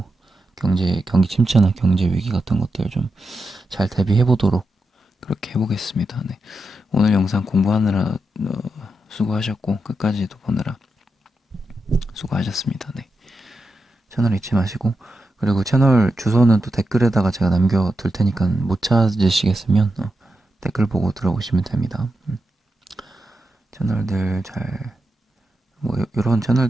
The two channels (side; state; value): both; normal; correlation 0.87